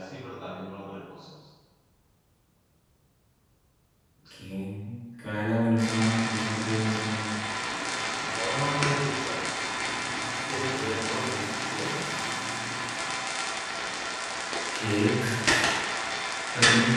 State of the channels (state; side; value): identical; both; correlation 1.00